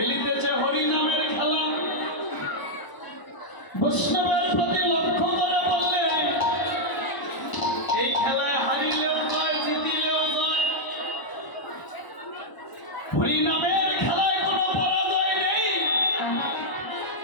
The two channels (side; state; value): right; late; 1.0 ms